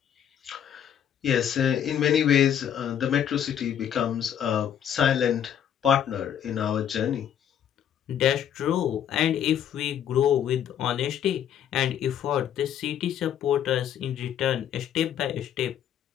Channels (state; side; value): quieter; right; 9.5 dB